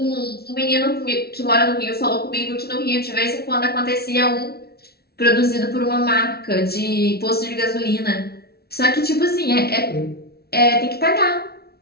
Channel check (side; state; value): right; late; 0.45 ms